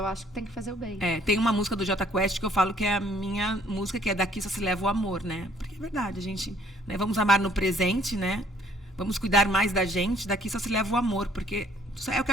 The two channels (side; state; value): both; normal; correlation 0.61